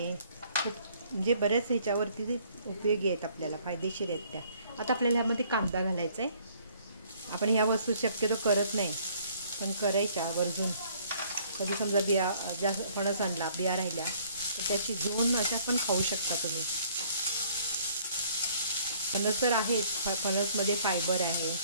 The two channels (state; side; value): inverted; both; correlation -0.60